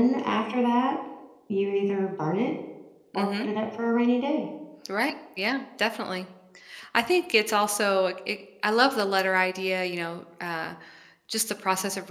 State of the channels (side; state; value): both; identical; correlation 1.00